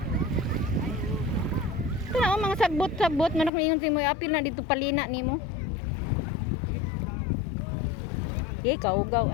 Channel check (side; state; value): right; drops out; at 3.5 s